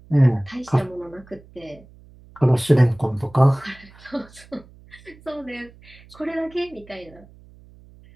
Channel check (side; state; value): right; noise; hum, 24 dB below the sound